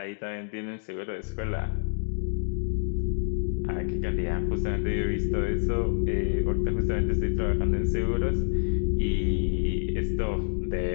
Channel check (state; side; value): silent; right; digital silence